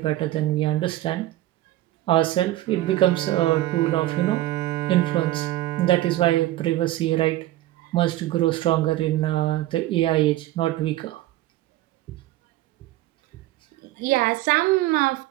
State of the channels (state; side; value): quieter; left; 15.5 dB